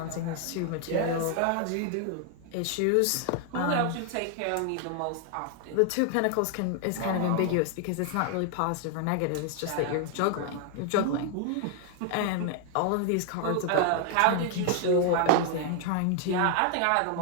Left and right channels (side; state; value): both; different; correlation 0.00